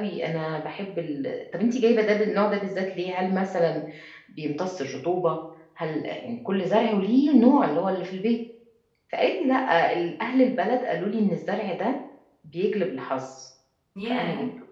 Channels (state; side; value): identical; both; correlation 1.00